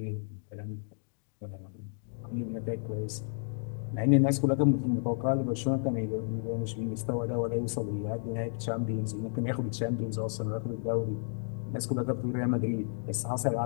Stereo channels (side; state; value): right; silent; digital silence